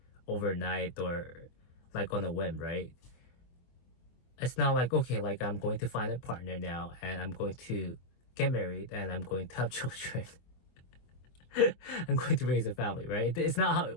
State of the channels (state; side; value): late; right; 24 ms